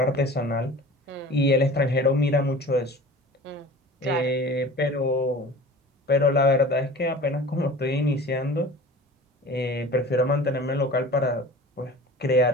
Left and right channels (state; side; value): normal; both; correlation 0.39